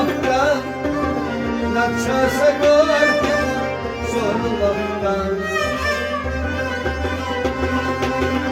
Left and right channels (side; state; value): both; identical; correlation 1.00